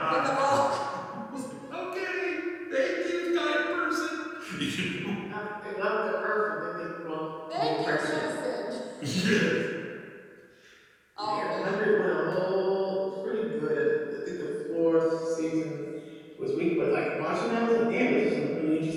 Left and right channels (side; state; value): both; identical; correlation 1.00